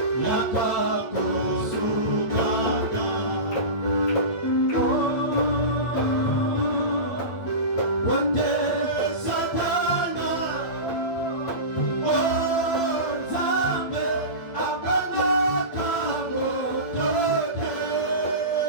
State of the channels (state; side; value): late; right; 8.9 ms